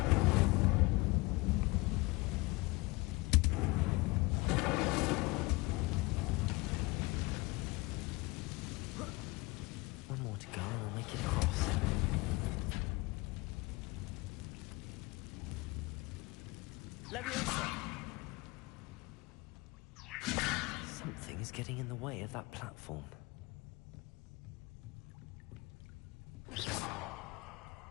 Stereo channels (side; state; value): right; quieter; 23.8 dB